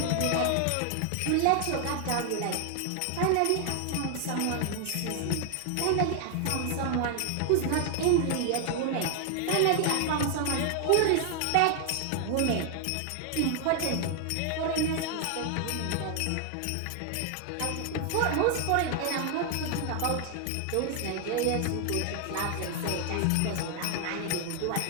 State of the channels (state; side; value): different; both; correlation 0.00